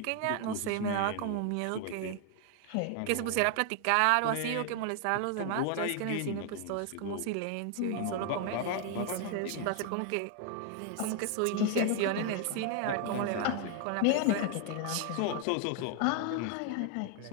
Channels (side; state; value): both; different; correlation 0.00